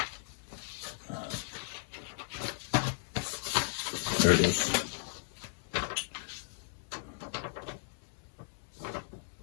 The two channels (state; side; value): silent; right; 54 dB below the other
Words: There it is.